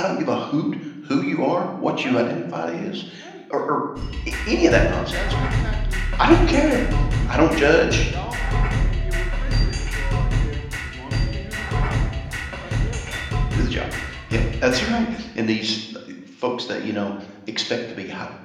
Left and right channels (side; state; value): both; identical; correlation 1.00